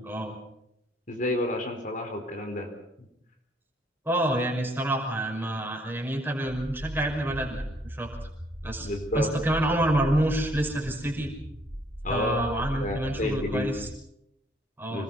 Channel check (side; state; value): both; normal; correlation 0.65